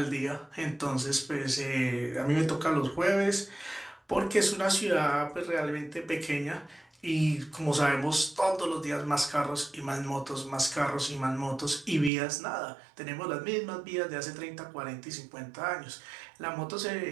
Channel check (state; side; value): drops out; left; at 12.1 s